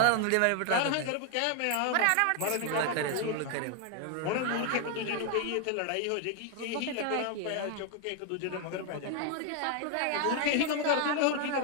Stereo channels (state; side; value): different; both; correlation 0.00